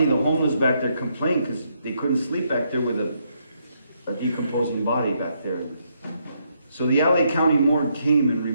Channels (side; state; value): both; inverted; correlation -0.76